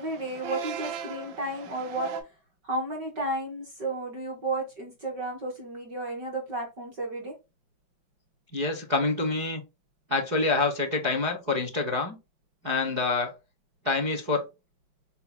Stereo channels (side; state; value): left; late; 5.3 ms